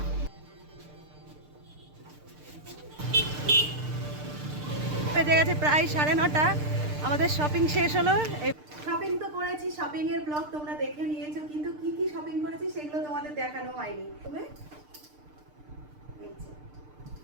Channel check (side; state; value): left; late; 6.7 ms